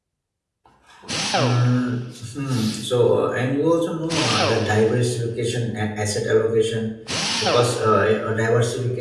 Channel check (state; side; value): identical; both; correlation 1.00